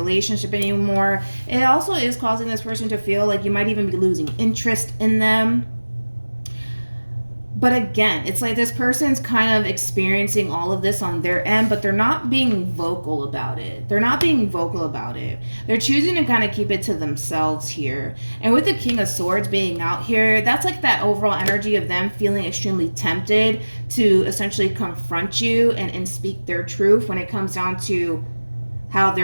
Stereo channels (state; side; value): inverted; both; correlation -1.00